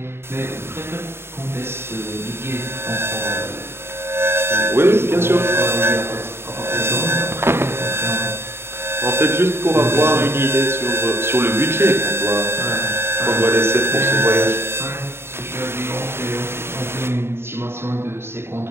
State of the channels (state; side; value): late; left; 0.12 ms